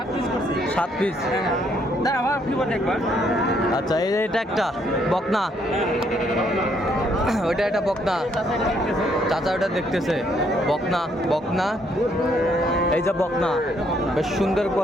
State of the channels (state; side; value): normal; both; correlation 0.70